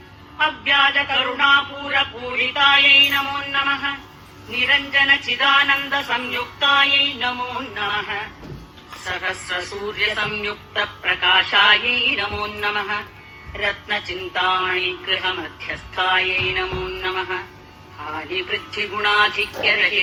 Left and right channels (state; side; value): identical; both; correlation 1.00